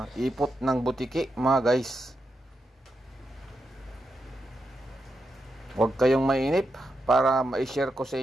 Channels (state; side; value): normal; both; correlation 0.86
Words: ipot ng butiki mga guys. Huwag kayong mainip para ma-share ko sa